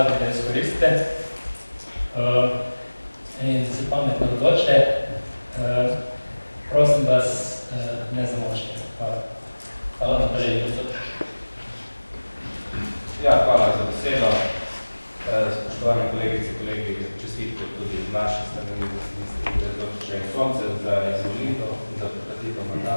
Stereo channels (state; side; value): inverted; both; correlation -1.00